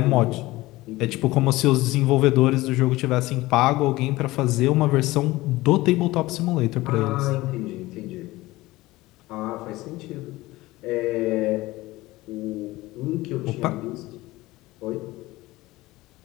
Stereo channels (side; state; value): right; quieter; 19.0 dB